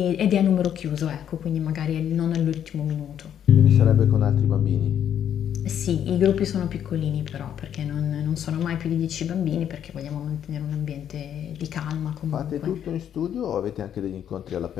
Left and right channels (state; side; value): quieter; right; 9.5 dB